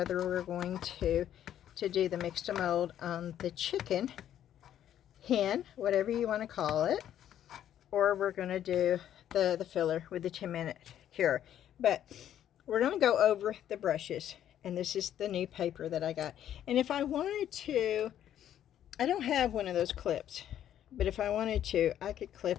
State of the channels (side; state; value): right; quieter; 10.8 dB